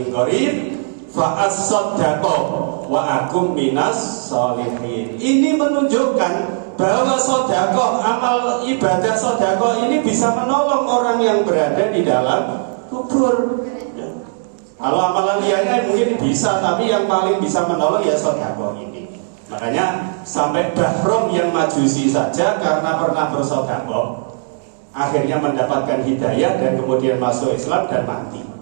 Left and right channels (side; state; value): left; silent; digital silence